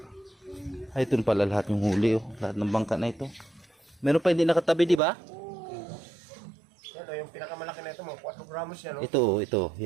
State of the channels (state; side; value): drops out; left; at 5.0 s